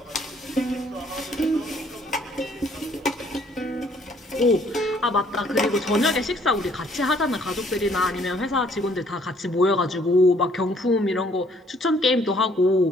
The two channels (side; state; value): both; normal; correlation 0.62